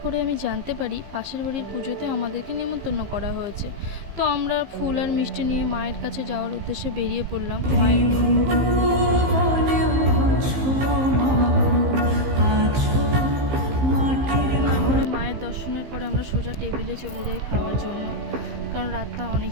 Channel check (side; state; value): left; late; 15 ms